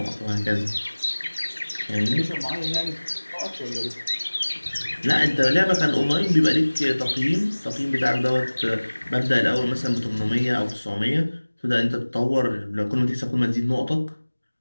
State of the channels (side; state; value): both; inverted; correlation -1.00